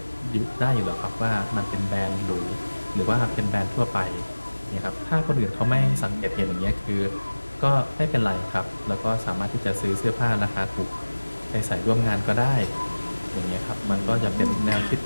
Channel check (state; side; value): inverted; both; correlation -1.00